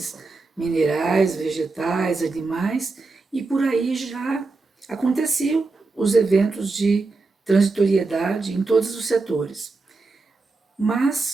minerais, vegetais, animais, e por aí já aconteciam os eventos de transitoriedade em todos os setores.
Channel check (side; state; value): left; quieter; 3.7 dB